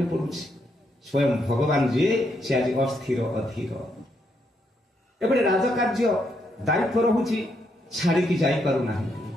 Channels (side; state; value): both; normal; correlation 0.77